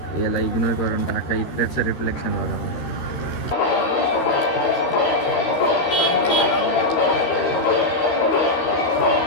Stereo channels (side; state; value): right; late; 13 ms